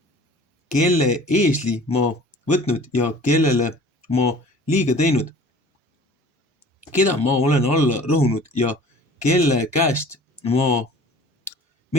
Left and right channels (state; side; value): normal; both; correlation 0.46